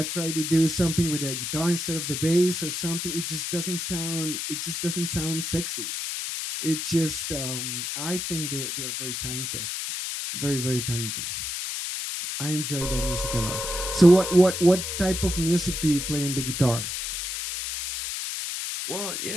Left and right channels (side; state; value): left; noise; hiss, 3 dB below the sound